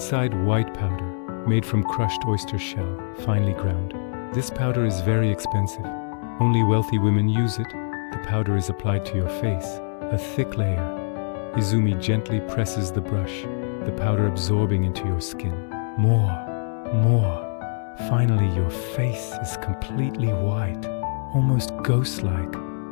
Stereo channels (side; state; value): right; silent; 62 dB below the other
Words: white powder, made from crushed oyster shell, finely ground. This powder is very expensive. Only wealthy women use it. The powder is applied to your face, a thick layer. Izumi gently presses the brush, the powder absorbing into your skin. More, more. Finally, your face is completely white, almost ghost-like.